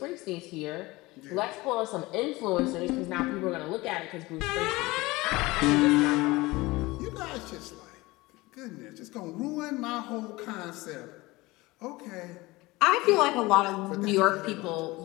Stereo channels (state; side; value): quieter; right; 21.2 dB